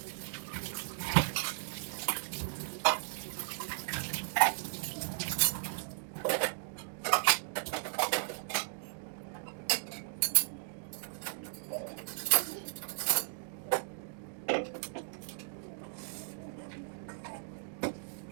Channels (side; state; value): left; silent; digital silence